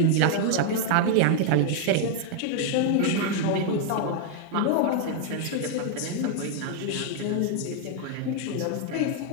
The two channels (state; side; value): different; both; correlation 0.00